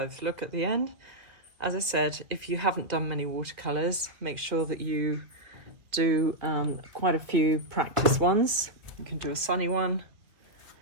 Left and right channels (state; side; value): late; left; 2.1 ms